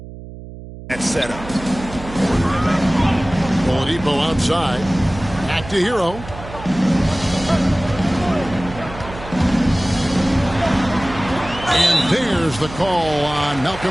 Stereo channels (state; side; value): noise; right; hum, 14 dB below the sound